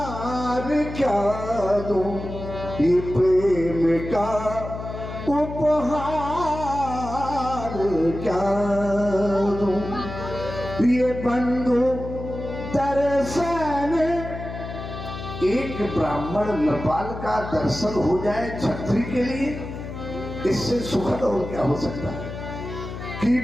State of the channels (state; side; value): noise; left; hum, 9 dB below the sound